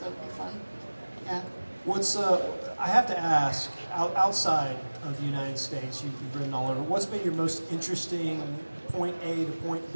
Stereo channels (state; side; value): inverted; both; correlation -1.00